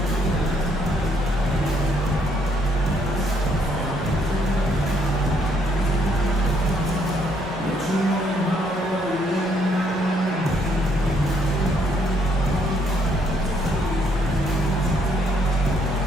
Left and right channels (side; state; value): both; normal; correlation 0.70